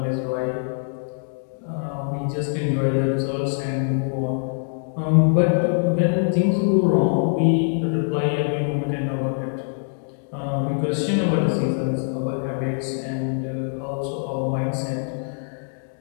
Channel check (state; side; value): silent; right; digital silence